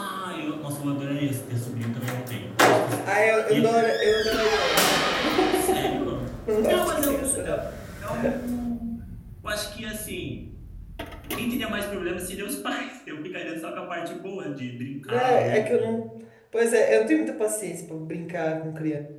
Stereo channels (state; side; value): identical; both; correlation 1.00